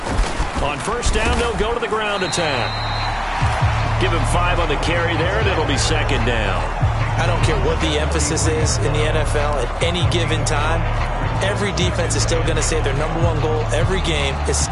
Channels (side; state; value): both; identical; correlation 1.00